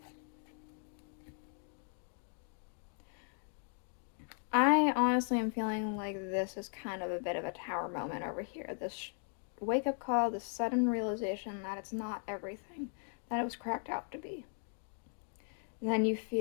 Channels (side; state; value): right; silent; 53 dB below the other